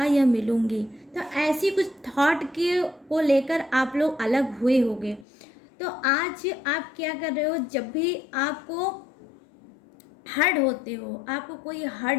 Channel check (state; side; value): drops out; right; at 5.2 s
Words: या मिलूँगी। तो ऐसी कुछ थॉट के को लेकर आप लोग अलग हुए होंगे। तो आज आप क्या कर रहे हो? जब भी आपको हर्ट होते हो, आपको कोई